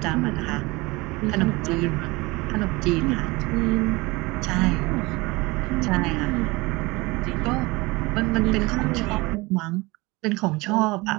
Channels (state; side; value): quieter; left; 23.3 dB